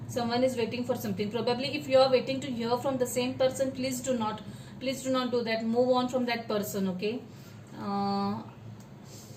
Someone is waiting for something. Probably if you are waiting to hear from the same person, please do not do that. Move on from that person. Okay,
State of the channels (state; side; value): identical; both; correlation 1.00